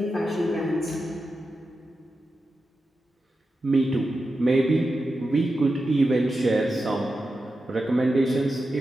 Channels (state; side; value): normal; both; correlation 0.90